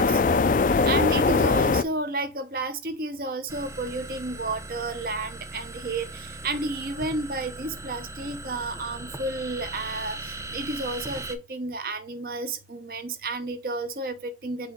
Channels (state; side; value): normal; both; correlation 0.13